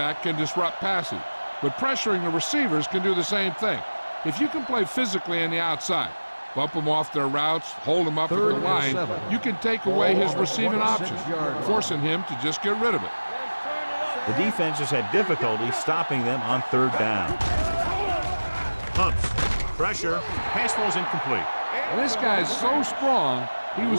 can disrupt passing, but pressuring the receivers can do the same thing. If you can play physically on the outside, bump them off their routes, hold them up at the line, you can take away his receiving options, forcing him to just get rid of it. The defense has had difficulty stopping them on third down. Pumps. Pressure. Pass falls incomplete. And this guy's so strong, he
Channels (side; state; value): both; inverted; correlation -1.00